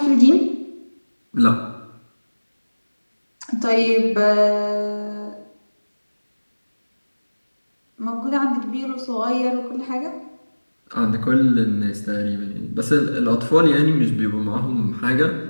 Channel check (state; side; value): inverted; both; correlation -1.00